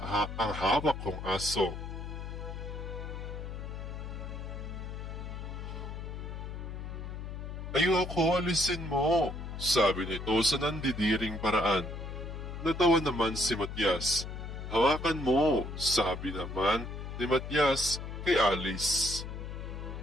hawak kong aso. Ayoko, alisin mo, sabi nito sa nandidiring paraan. Natawa naman si Matias. Hawakan mo, sabi naman ni Matias kay Alice.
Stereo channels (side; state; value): left; noise; hum, 7 dB below the sound